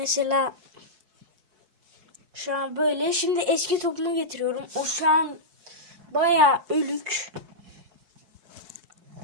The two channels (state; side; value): late; left; 4.6 ms